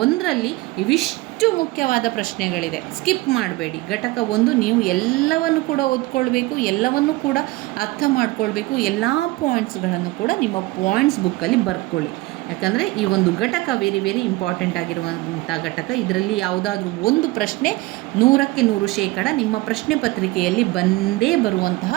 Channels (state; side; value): quieter; left; 20.3 dB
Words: ಇವಿಷ್ಟು ಮುಖ್ಯವಾದ ಪ್ರಶ್ನೆಗಳಿದೆ, ಸ್ಕಿಪ್ ಮಾಡಬೇಡಿ. ಘಟಕ 1 ನೀವು ಎಲ್ಲವನ್ನು ಕೂಡ ಓದ್ಕೊಳ್ಬೇಕು, ಎಲ್ಲವನ್ನು ಕೂಡ ಅರ್ಥ ಮಾಡ್ಕೊಳ್ಬೇಕು. ಎಲ್ಲ ಪಾಯಿಂಟ್ಸ್ಗಳನ್ನು ಕೂಡ ನಿಮ್ಮ ಪಾಯಿಂಟ್ಸ್ ಬುಕ್ಕಲ್ಲಿ ಬರ್ಕೊಳ್ಳಿ. ಯಾಕಂದರೆ ಈ ಒಂದು ಘಟಕ ವೆರಿ ಇಂಪಾರ್ಟೆಂಟ್ ಆಗಿರುವಂಥ ಘಟಕ. ಇದರಲ್ಲಿ ಯಾವುದಾದ್ರೂ ಒಂದು ಪ್ರಶ್ನೆ 100% ನಿಮ್ಮ ಪ್ರಶ್ನೆ ಪತ್ರಿಕೆಯಲ್ಲಿ ಬಂದೇ